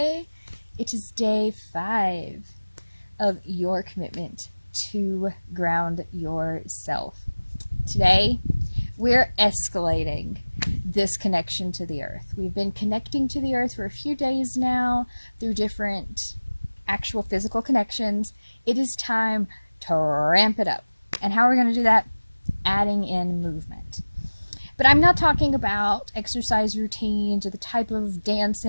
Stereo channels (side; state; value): both; inverted; correlation -1.00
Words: It is day 5 of your commitment to ground yourself. Today, we're escalating this connection to the earth. We've been connecting to the earth for a few days now through different actual physical connections. It is time to ramp it up. And how are we going to do that? Adding in movement. But I'm not talking about exercise routines or the type of